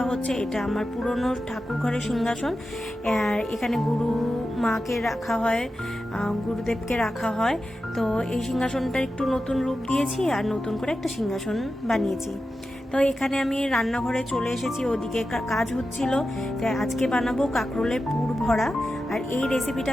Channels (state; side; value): normal; both; correlation 0.91